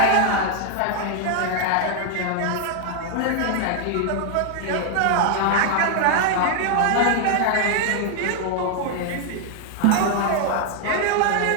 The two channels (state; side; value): different; both; correlation 0.00